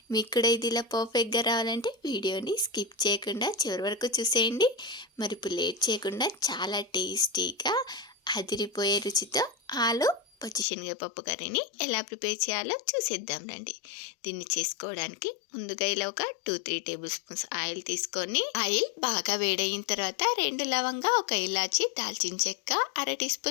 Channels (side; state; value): right; drops out; at 10.7 s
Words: మీకు కూడా ఇది ఇలా పర్ఫెక్ట్గా రావాలంటే వీడియోని స్కిప్ చేయకుండా చివరి వరకు చూసేయండి. మరి ఇప్పుడు లేట్ చేయకుండా చాలా టేస్టీగా అదిరిపోయే రుచితో ఆలు పచ్చి శనగపప్పు కర్రీని ఎలా ప్రిపేర్ చేయాలో చూసేద్దాం రండి. దీన్ని చేసుకోవడానికి ముందుగా ఇలా ఒక 2-3 టేబుల్ స్పూన్స్ ఆయిల్ తీసుకొని, ఆయిల్ బాగా వేడయిన తర్వాత 2 లవంగా, 1 ఇలాచి, దాల్చిన చెక్క, 1/2 టీ